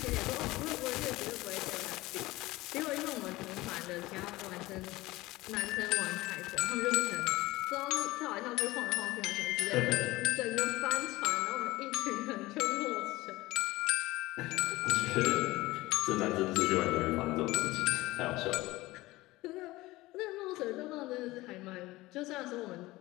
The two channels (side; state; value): right; quieter; 19.2 dB